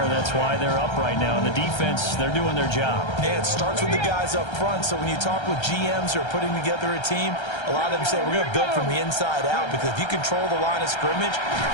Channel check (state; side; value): late; right; 1.3 ms